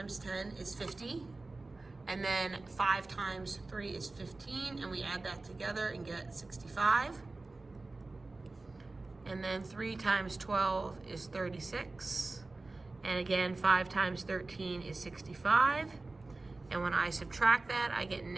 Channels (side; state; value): left; quieter; 3.3 dB